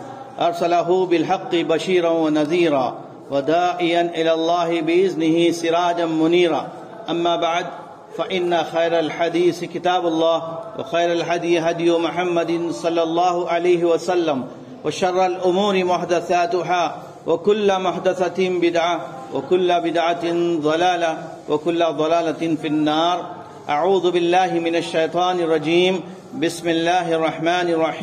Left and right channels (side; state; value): both; identical; correlation 1.00